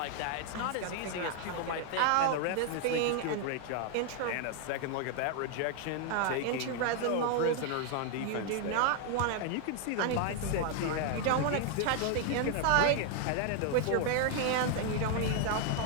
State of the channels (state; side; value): different; both; correlation 0.00